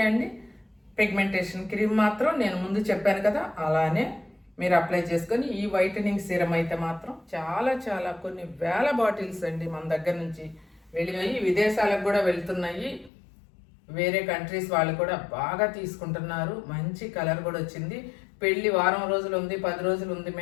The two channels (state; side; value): drops out; right; at 13.1 s